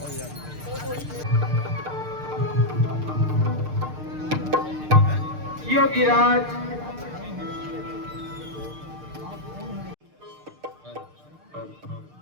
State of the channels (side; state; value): left; late; 6.6 ms